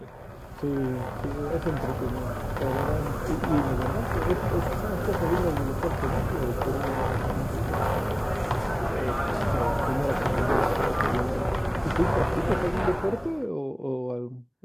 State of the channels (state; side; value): identical; both; correlation 1.00